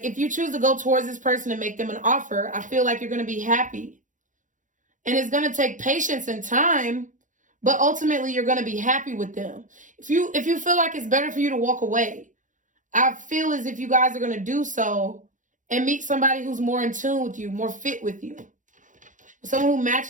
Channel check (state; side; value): late; left; 0.37 ms